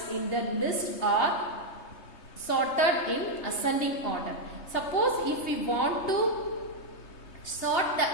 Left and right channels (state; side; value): late; right; 3.3 ms